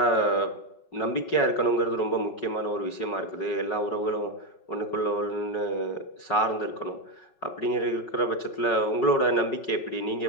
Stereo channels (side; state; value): right; late; 5.4 ms